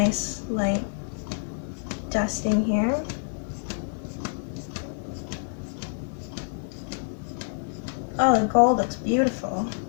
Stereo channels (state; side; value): silent; right; digital silence